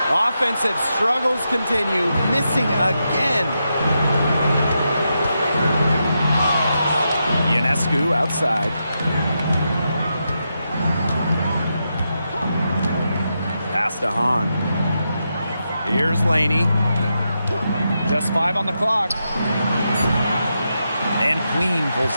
Offensive struggles continue, missing again. Ionescu outside. Pass to Hahn. Here's Laney. Just 5 on the clock. And Queen pulls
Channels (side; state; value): both; inverted; correlation -0.85